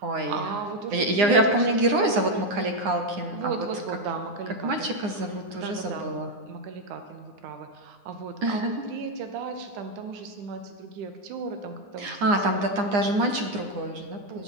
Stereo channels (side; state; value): left; late; 9.8 ms